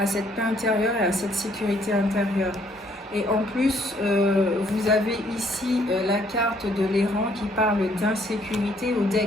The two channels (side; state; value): both; normal; correlation 0.66